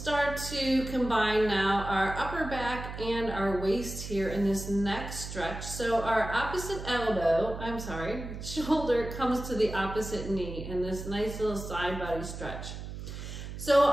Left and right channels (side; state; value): right; noise; hum, 9 dB below the sound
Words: to combine now our upper back and our waist here in this next stretch. So our shoulder comes to the opposite knee in this nice little side body stretch. So